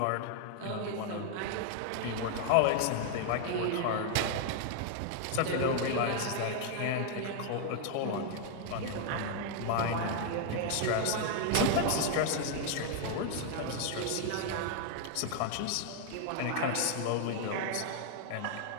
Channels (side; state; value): both; different; correlation 0.00